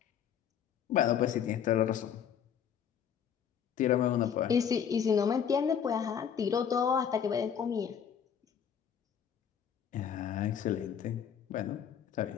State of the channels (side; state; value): right; quieter; 8.3 dB